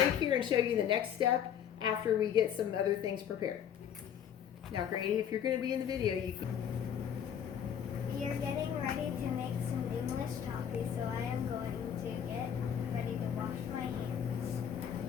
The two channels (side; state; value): right; quieter; 8.9 dB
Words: here and show you the next step after we get some other things prepared. Now, Grady, if you're going to be in the video, you can. We are getting ready to make some English toffee, so I am going to get ready to wash my hands.